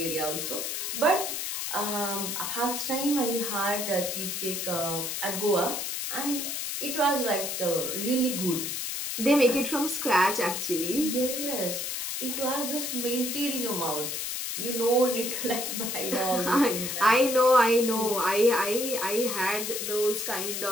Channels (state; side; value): noise; left; hiss, 3 dB below the sound